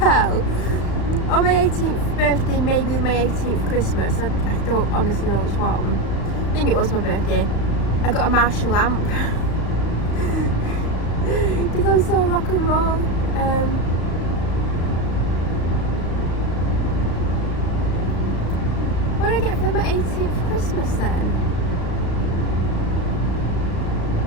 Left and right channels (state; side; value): late; right; 35 ms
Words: On my 18th birthday, maybe my 18th Christmas, I don't honestly know which one. I think it was my birthday. I got a Marshall lamp. Because I'm so rock and roll. What did I get for my 18th Christmas then?